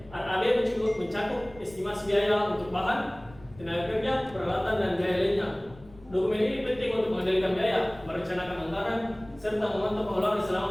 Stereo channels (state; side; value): noise; left; rumble, 22 dB below the sound